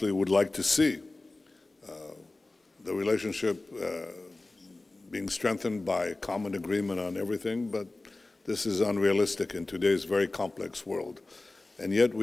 would like to see the relationship being strengthened by common agreement on everything, but this is unrealistic in today's very complex world. And yet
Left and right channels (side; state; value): right; quieter; 3.1 dB